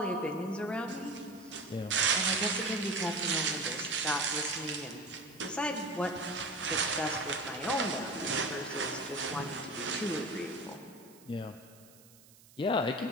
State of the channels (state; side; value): noise; right; hiss, 24 dB below the sound